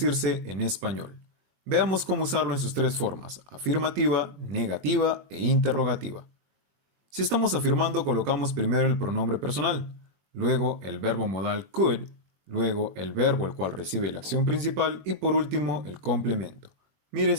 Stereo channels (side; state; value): left; late; 21 ms